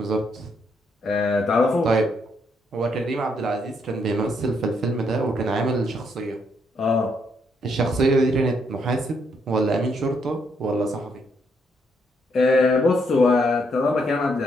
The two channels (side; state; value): both; normal; correlation 0.75